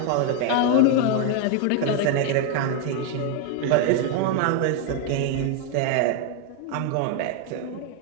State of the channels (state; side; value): different; both; correlation 0.01